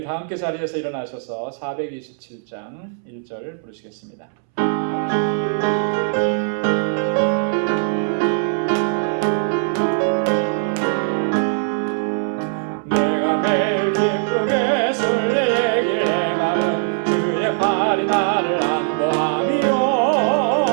다 함께 자리에서 일어나셔서 427장 1절 부르시겠습니다. 내가 매일 기쁘게 술래 얘기를 행하는 주의 팔이 나를 안보하며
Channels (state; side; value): silent; left; 65 dB below the other